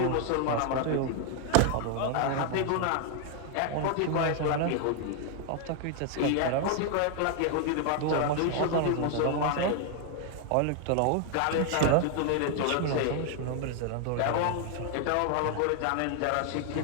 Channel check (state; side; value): different; both; correlation 0.00